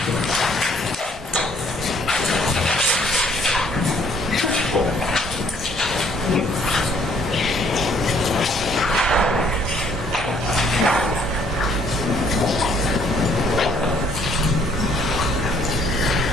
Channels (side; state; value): both; normal; correlation 0.63